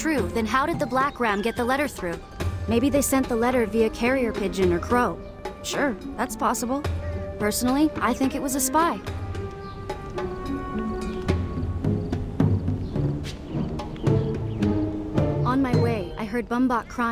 then how did the Black Ram get the letter through? Maybe they sent the letter via carrier pigeon or crow. Sure, that's possible. Personally, I think it was a spy. On my way, I heard Bumbok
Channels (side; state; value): both; identical; correlation 1.00